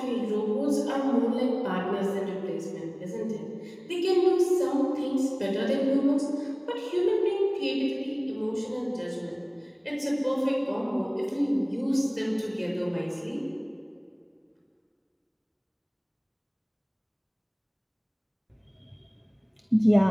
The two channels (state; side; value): identical; both; correlation 1.00